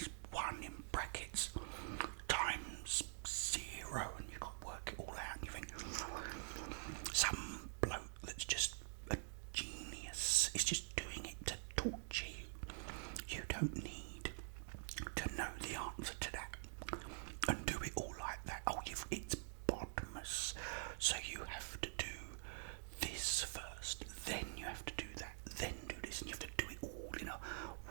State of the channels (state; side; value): silent; left; digital silence